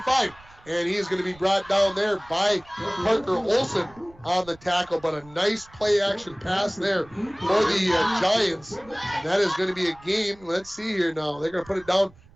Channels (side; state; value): right; noise; rumble, 25 dB below the sound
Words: and he is going to be brought down there by Parker Olson on the tackle. But a nice play action pass there for the Giants, and that is going to be a gain. Let's see here now. They're going to put it down